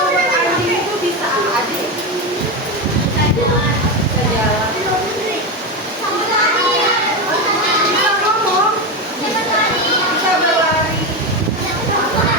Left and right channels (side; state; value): both; normal; correlation 0.15